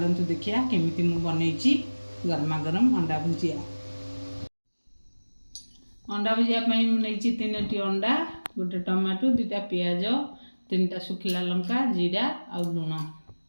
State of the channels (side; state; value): both; inverted; correlation -1.00